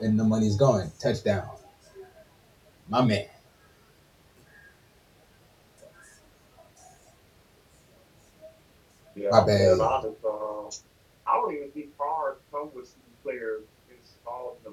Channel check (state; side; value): identical; both; correlation 1.00